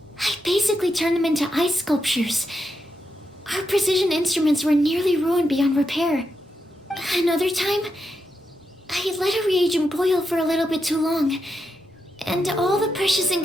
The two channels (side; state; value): both; normal; correlation 0.85